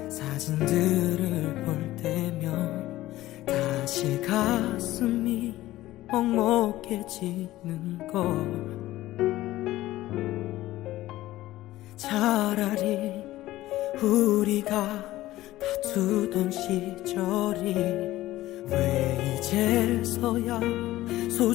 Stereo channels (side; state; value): right; quieter; 16.0 dB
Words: 사진들을 볼 때면 다시 가슴이 먹먹해지는 걸. 차라리 우리가 다투던 시절이 왜 이제서야